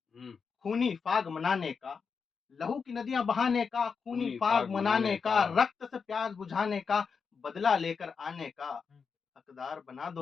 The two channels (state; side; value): quieter; right; 5.7 dB